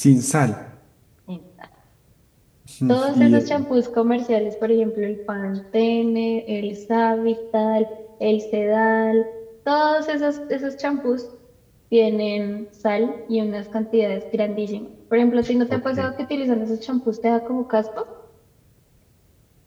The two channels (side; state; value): both; identical; correlation 1.00